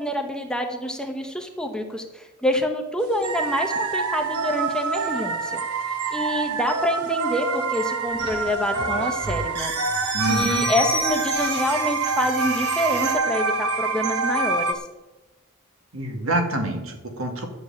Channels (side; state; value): both; normal; correlation 0.26